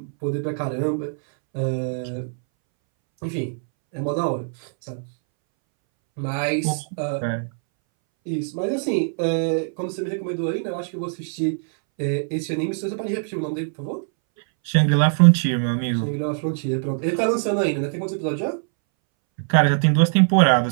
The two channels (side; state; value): left; silent; 63 dB below the other